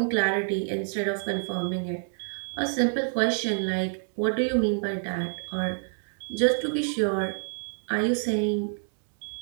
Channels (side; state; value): left; silent; digital silence